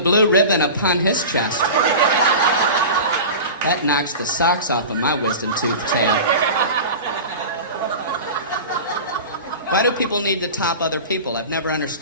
ribbon upon his chest. That knocks the socks off of my wisdom tooth tail. Why do people need to top other people? I've never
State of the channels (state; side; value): inverted; both; correlation -0.32